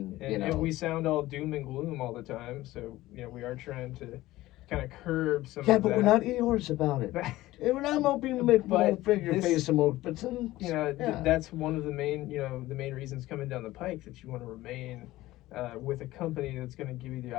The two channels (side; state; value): right; quieter; 17.0 dB